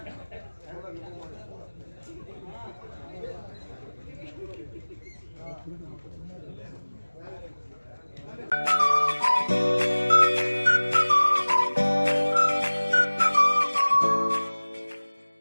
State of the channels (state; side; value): inverted; both; correlation -1.00